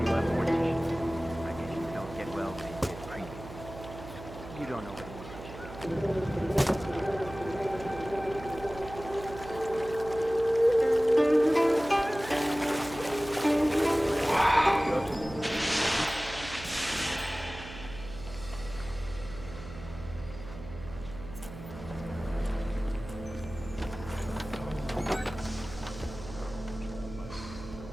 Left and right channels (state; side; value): noise; right; hum, 13 dB below the sound